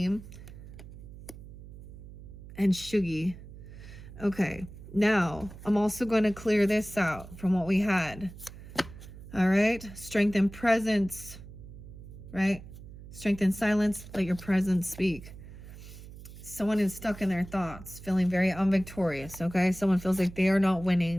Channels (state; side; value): noise; right; hum, 15 dB below the sound